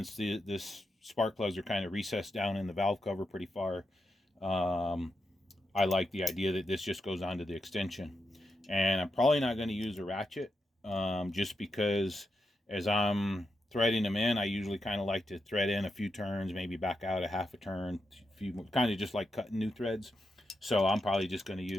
this spark plugs are kind of recessed down in the valve cover pretty far, I like the idea that this just goes onto the extension. And I'm probably not going to use a ratchet, just because as I'm threading them in, I usually kind of like to thread in a few turns, maybe back out a half a turn, kind of just like cutting new threads. So I'm probably just going to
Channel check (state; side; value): normal; both; correlation 0.86